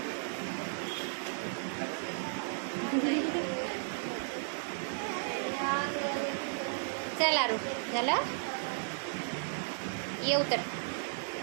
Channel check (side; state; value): left; silent; 55 dB below the other